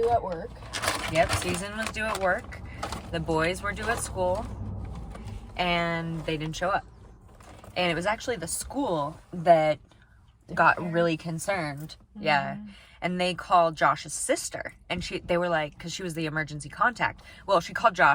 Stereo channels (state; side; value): identical; both; correlation 1.00